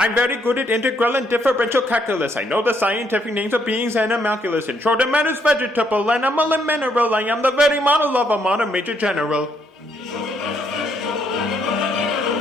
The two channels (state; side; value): normal; both; correlation 0.72